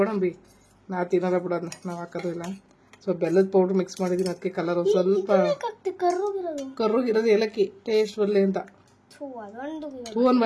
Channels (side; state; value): both; identical; correlation 1.00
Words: ನಾವು ತಿನ್ನೋದ ಬಿಡೋದನ್ನ, ನಾವು ಹಾಕೋದು ಇಲ್ಲ. ಸೊ ಬೆಲ್ಲದ ಪೌಡ್ರ್ ಮಿಕ್ಸ್ ಮಾಡಿದೀನಿ, ಅದಕ್ಕೆ ಕಲರ್ ಸ್ವಲ್ಪ ಕರ್ರುಗಿರೋದು ಏಲಕ್ಕಿ ಟೇಸ್ಟ್ ಬರಲಿ ಅಂತ. ಹೂ